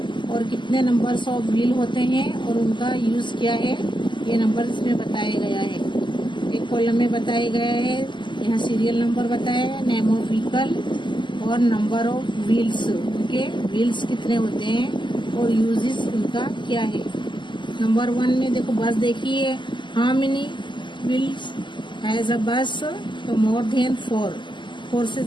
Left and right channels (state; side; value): late; right; 0.23 ms